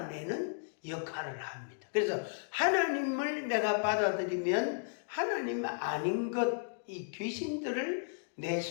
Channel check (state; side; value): silent; right; digital silence